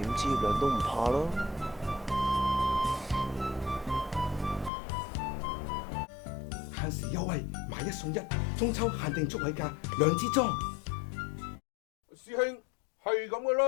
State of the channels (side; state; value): right; drops out; at 4.7 s